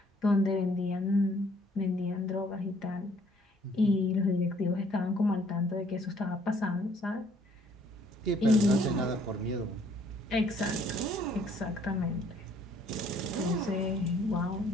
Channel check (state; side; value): normal; both; correlation 0.62